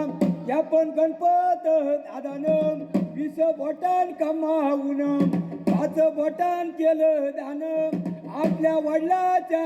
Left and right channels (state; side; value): identical; both; correlation 1.00